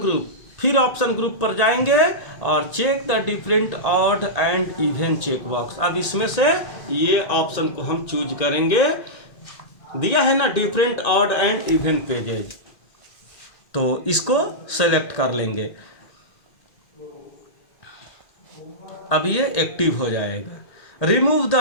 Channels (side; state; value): right; late; 1.8 ms